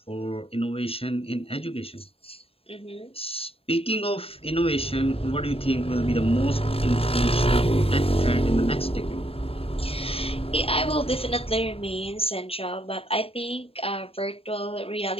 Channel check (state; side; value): late; right; 0.28 ms